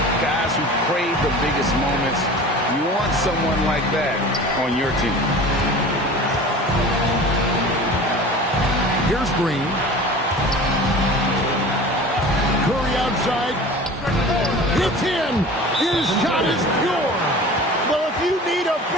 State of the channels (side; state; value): both; normal; correlation 0.39